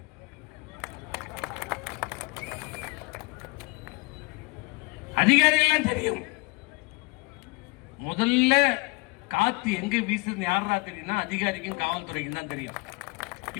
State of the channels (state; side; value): quieter; right; 26.3 dB